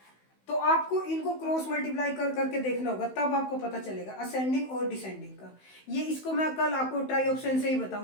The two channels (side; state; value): right; late; 16 ms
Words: तो आपको इनको क्रॉस मल्टीप्लाई कर करके देखना होगा, तब आपको पता चलेगा असेंडिंग और डिसेंडिंग का। ये इसको मैं कल आपको ट्राई ऑप्शन से ही